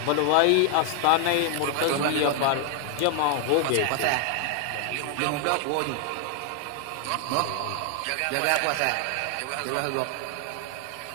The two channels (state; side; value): different; both; correlation 0.00